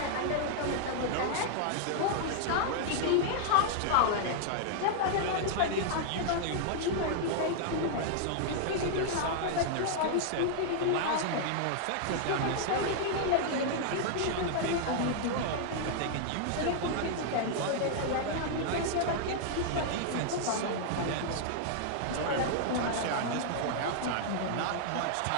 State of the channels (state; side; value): different; both; correlation -0.01